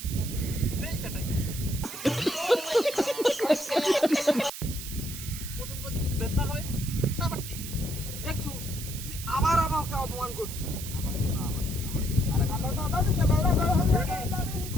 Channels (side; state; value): right; noise; hiss, 9 dB below the sound